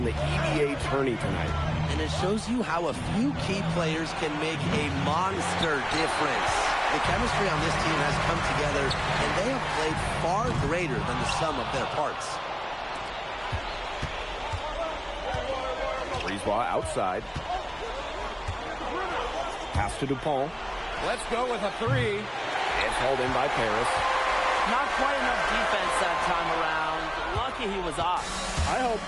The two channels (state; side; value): identical; both; correlation 1.00